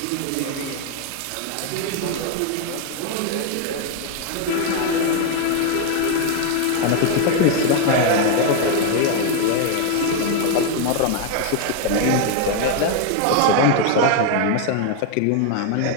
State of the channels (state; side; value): different; both; correlation 0.01